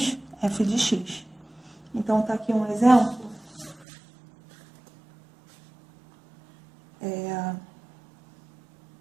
f de x. Então, tá aqui um exemplo.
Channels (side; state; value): left; drops out; at 3.9 s